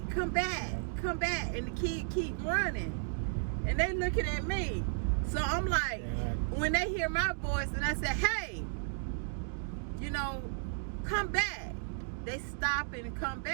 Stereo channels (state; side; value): silent; left; digital silence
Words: come back, come back. And the kid keep running. And they looking at me. So I'm like, when they hear my voice and I say, hey, come back, they stop and come